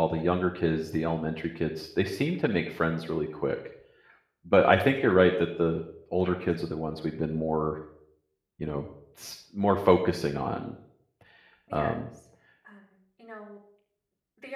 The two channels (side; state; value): both; identical; correlation 1.00